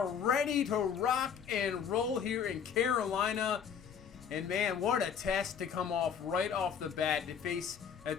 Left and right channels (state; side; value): quieter; right; 7.4 dB